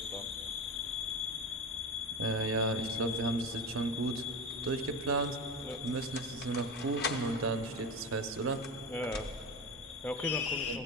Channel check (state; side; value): normal; both; correlation 0.24